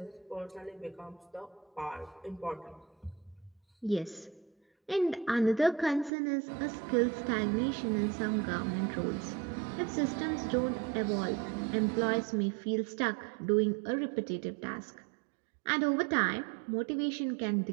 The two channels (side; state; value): left; drops out; at 6.1 s